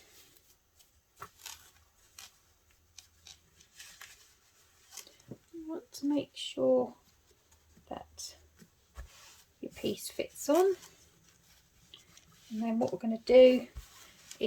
you want to make sure that your piece fits on, and then what we're going to do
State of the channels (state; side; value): identical; both; correlation 1.00